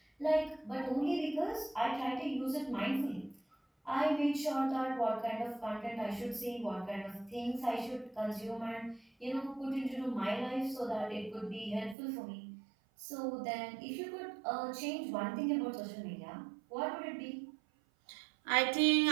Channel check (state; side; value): drops out; left; at 12.0 s